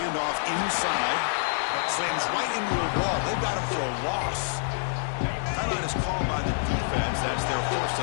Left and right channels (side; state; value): right; silent; 60 dB below the other